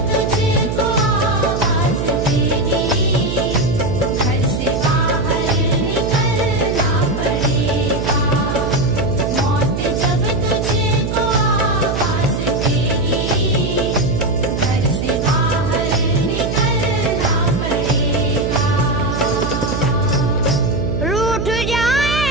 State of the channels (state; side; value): noise; right; hum, 2 dB below the sound